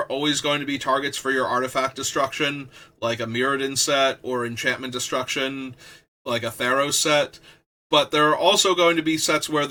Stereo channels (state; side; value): identical; both; correlation 1.00